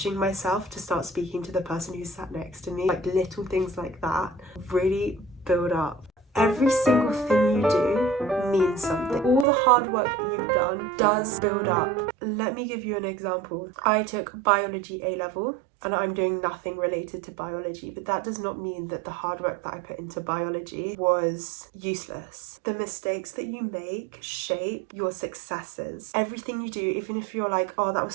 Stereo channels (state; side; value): drops out; left; at 9.5 s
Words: myself to start speaking to the person who sat next to me, like little things like that really build up. Every single thing you do means something. All the hard work that you've done does build up. Let me give you an example. I took biology A-level and I'm doing nothing related to biology, but that does not mean that the hard work that I put into biology was useless. The mistakes that you make shape your successes. Everything you do, even if you're like, oh, that was